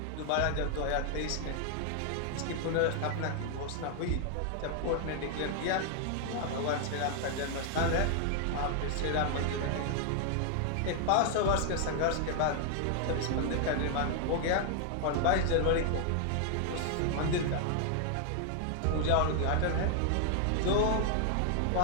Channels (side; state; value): both; different; correlation 0.00